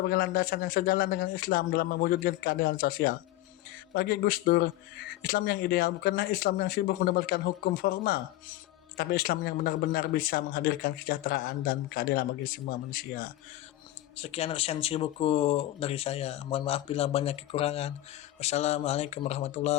landasan yang sejalan dengan Islam dalam mewujudkan keadilan sosial. Bagi Gus Dur, Islam yang ideal bukanlah Islam yang sibuk mendapatkan hukum formal, tapi Islam yang benar-benar bisa menghadirkan kesejahteraan dan keadilan bagi semua manusia. Sekian resensi buku dari saya. Mohon maaf bila banyak kekurangan. Wassalamualaikum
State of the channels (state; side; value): quieter; right; 15.6 dB